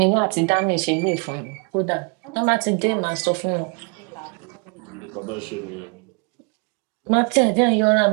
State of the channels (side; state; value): left; quieter; 34.4 dB